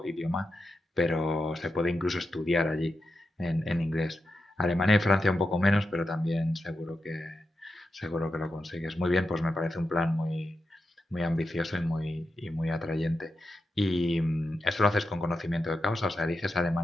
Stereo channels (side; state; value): both; normal; correlation 0.89